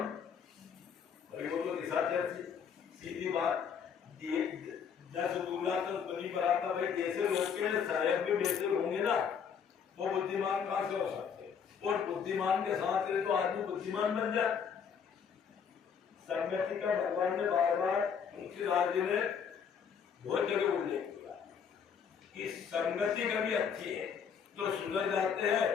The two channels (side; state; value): right; quieter; 7.0 dB